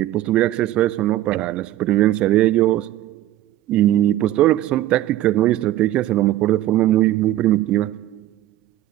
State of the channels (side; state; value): left; quieter; 14.3 dB